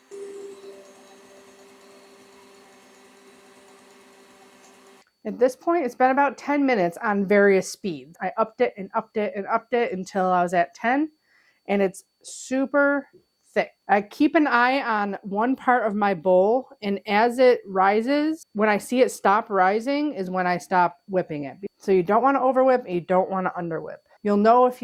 At this point, it's been about 10 minutes on various speeds. I upped it and upped it and upped it until I was at 10, and it's super thick. I keep an eye on one part of my bowl, and as it rises, when I see it stop rising is when I stop whipping it. So you don't want to overwhip and you don't want to underwhip. You'll know if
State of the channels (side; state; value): both; identical; correlation 1.00